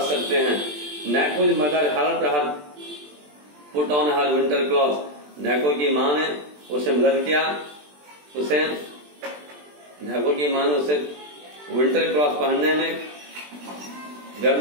सकते हैं। Naiko's mother helped her put on her winter cloth. Naiko की माँ ने उसे मदद किया, नैको की माँ ने उसे विंटर क्लॉथ पहनने में,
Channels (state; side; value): late; left; 20 ms